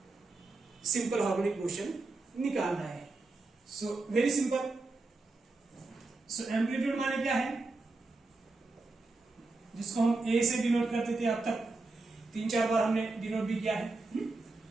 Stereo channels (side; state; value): left; quieter; 3.4 dB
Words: simple harmonic motion निकालना है। So very simple. So amplitude माने क्या है, जिसको हम ए से डिनोट करते थे, अब तक 3-4 बार हमने डिनोट भी किया है।